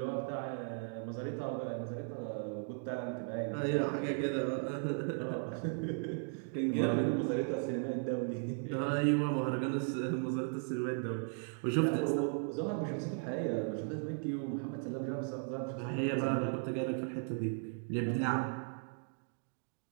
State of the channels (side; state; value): left; silent; 53 dB below the other